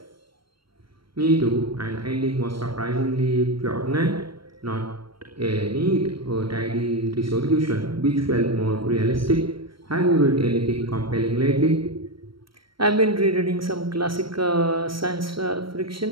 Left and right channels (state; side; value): late; left; 0.74 ms